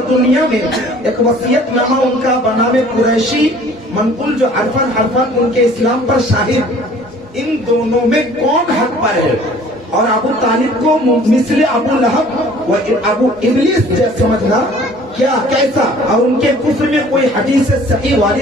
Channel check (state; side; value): normal; both; correlation 0.52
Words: میں ایک وصیت نامہ ان کا بنام قریشی منقول جو حرفاً ان کے اسلام پر شاہد. ان دونوں میں کون حق پر ہے اور ابو طالب کو مثل ابو لہب و ابو ابلیس جیسا سمجھنا کیا کیسا, اور ان کے کفر میں کوئی حدیث صحیح